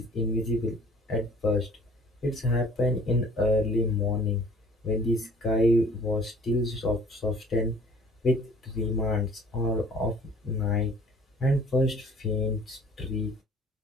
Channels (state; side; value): normal; both; correlation 0.52